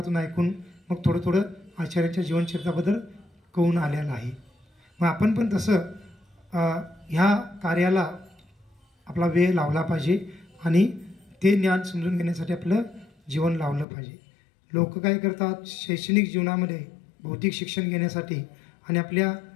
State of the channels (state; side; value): drops out; right; at 13.9 s